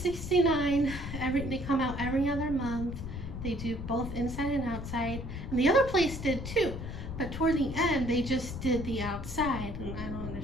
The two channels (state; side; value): noise; left; rumble, 7 dB below the sound